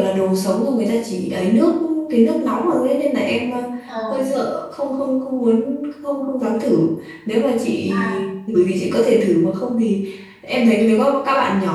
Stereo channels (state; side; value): identical; both; correlation 1.00